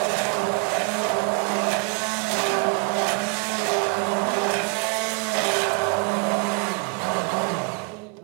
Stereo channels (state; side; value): quieter; left; 33.5 dB